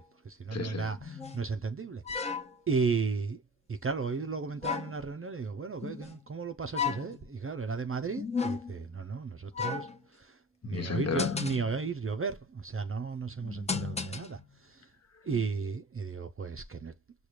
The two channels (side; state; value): both; normal; correlation 0.40